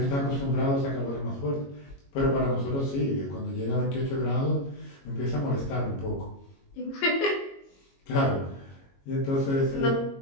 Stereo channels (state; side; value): late; right; 22 ms